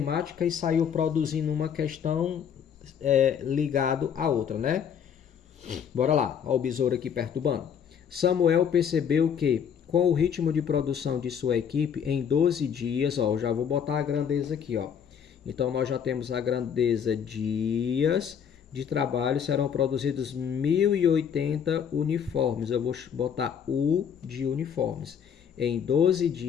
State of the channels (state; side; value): quieter; right; 7.9 dB